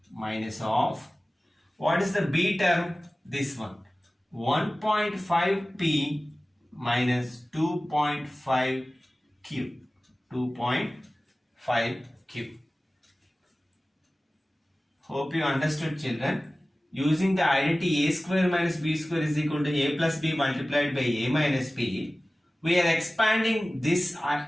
of, what is the B term? This one, 1.5p minus 2.5q. Hope you understood, children. Using the identity A square minus B square is equal to A plus B multiplied by A minus B, we are expanding this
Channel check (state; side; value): normal; both; correlation 0.97